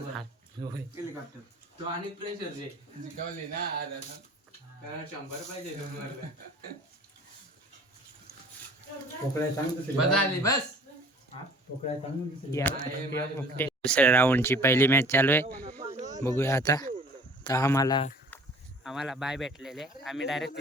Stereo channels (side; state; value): both; normal; correlation 0.48